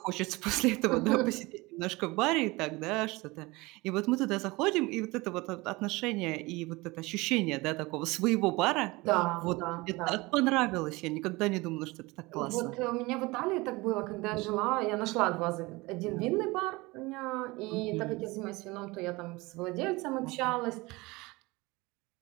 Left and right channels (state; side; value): quieter; left; 22.9 dB